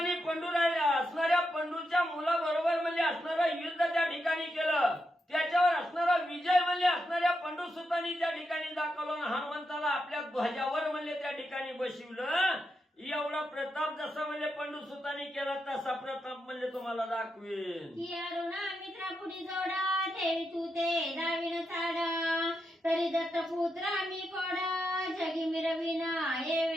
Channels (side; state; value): both; normal; correlation 0.85